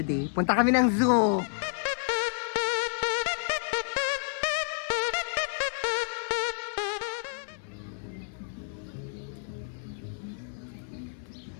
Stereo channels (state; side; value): silent; right; 58 dB below the other